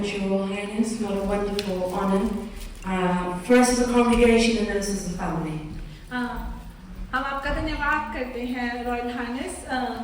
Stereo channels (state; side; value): identical; both; correlation 1.00